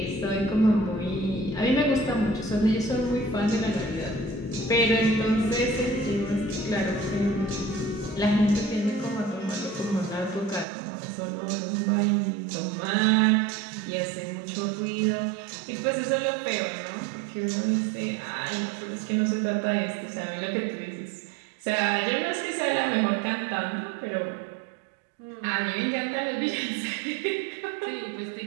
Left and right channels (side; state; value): left; drops out; at 10.7 s